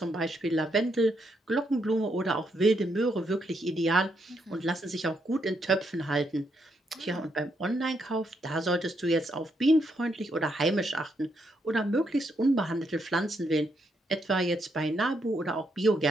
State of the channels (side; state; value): both; normal; correlation 0.77